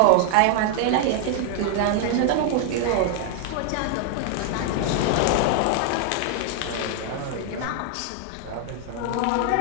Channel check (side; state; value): both; different; correlation 0.00